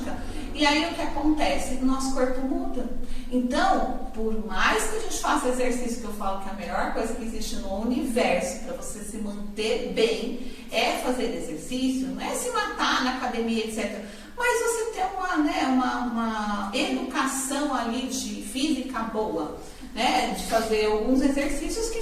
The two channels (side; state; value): both; identical; correlation 1.00